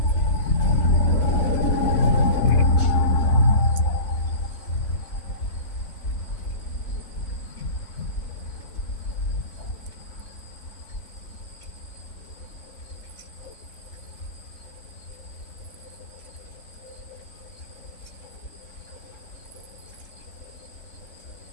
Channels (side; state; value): right; late; 4.5 ms